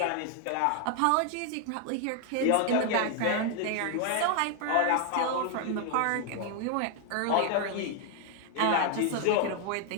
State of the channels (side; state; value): both; different; correlation 0.00